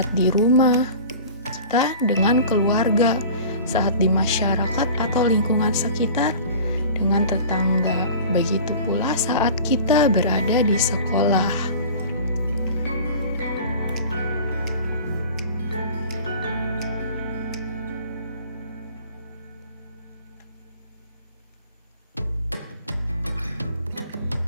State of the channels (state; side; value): inverted; both; correlation -0.41